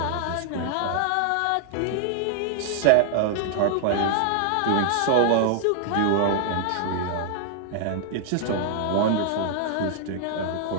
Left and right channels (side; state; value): both; different; correlation 0.00